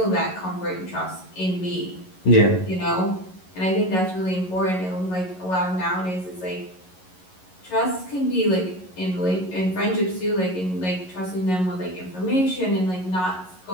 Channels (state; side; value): late; right; 11 ms